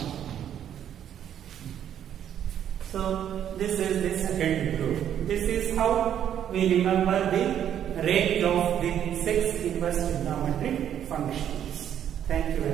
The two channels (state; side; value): quieter; left; 9.9 dB